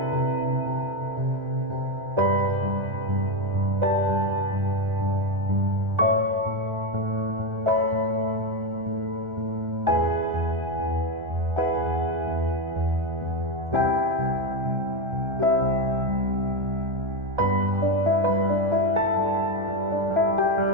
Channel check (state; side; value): late; left; 1.4 ms